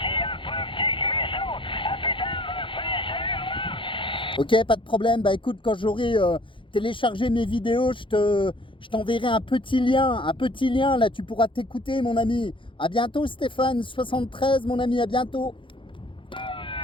Ok, pas de problème. Bah écoute, quand j'aurai téléchargé mes vidéos, je t'enverrai un petit lien. Là, tu pourras t'écouter, mon ami. À bientôt, Stéphane 73, mon ami. À bientôt.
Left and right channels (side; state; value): right; late; 0.25 ms